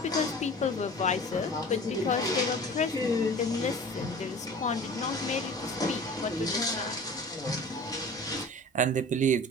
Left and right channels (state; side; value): normal; both; correlation 0.40